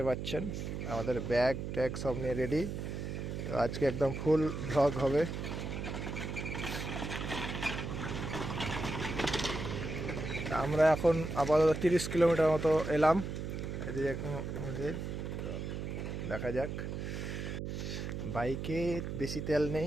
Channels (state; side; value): noise; right; hum, 5 dB below the sound